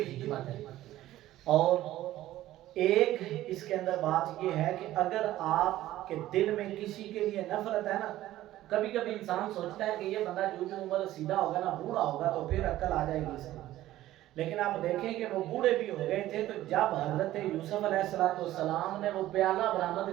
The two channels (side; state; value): left; quieter; 14.7 dB